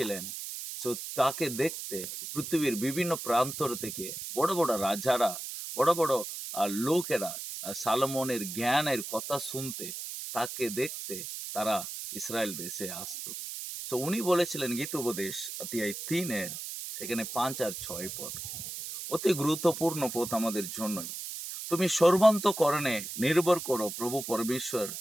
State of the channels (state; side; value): noise; right; hiss, 7 dB below the sound